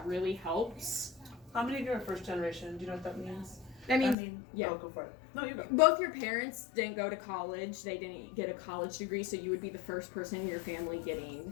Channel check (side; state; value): right; drops out; at 4.2 s